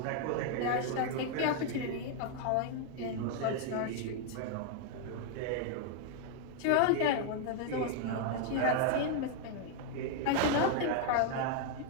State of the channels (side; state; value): both; different; correlation 0.00